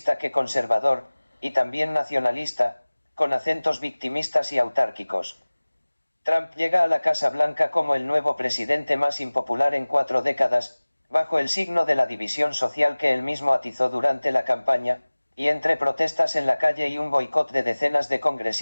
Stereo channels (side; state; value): both; inverted; correlation -1.00